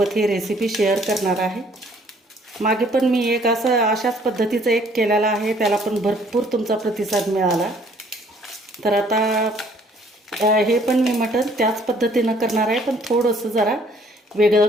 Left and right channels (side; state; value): both; normal; correlation 0.60